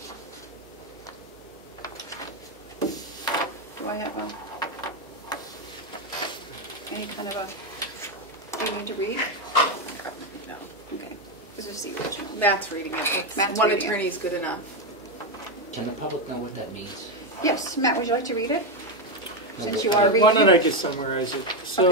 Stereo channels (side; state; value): both; normal; correlation 0.08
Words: Do I have any kind of a thing to read? No. Okay, this is the original. Matt's reading it. Matt's One reading it. attorney is good enough. Can the public know what that means? Yes, Matt, would you like to read it? Since you No, are Why reading don't I it. just summarize it?